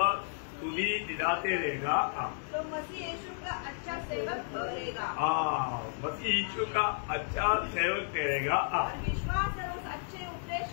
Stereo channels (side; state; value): right; silent; digital silence